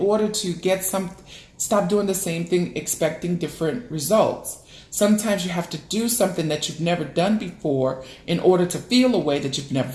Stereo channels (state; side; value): identical; both; correlation 1.00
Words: to get Stop doing the same thing expecting different results. Sometimes you have to do something that you've never done before in order to feel a way that you've never